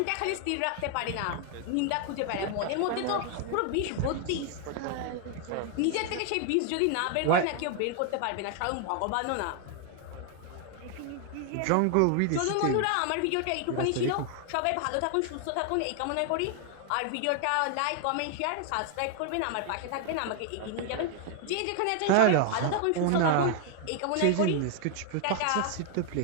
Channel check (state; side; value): different; both; correlation 0.00